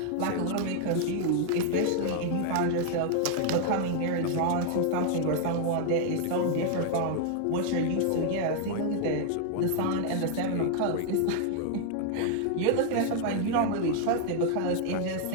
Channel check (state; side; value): different; both; correlation 0.00